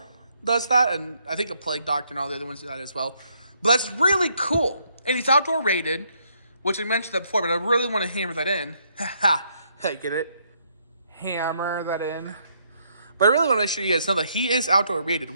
does that, and I think the Plague Doctor and all the other ones do that as well. But that's really cool, and he's outdoor rated, which I mentioned that before, but I really want to hammer that in. Hey, get it? Hammer that in. But I really want to make sure you guys know that he is outdoor rated,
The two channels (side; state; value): both; inverted; correlation -0.72